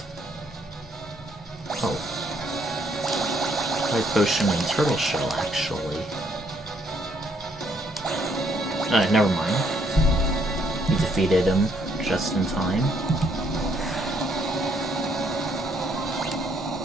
Oh. Light potion and turtle shell, actually. Never mind. We defeated him just in time.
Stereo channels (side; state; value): both; normal; correlation 0.69